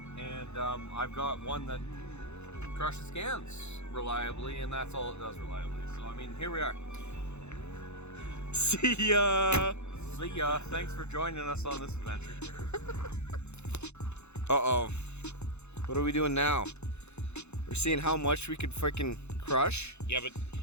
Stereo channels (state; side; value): late; right; 0.81 ms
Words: and I've got one that crushes cans reliably, and that's all it does reliably. So I mean, here we are. See ya. See ya. Thanks for joining us on this adventure. Uh-oh. What are we doing now? We're seeing how much we could freaking crush. crush. Yeah, but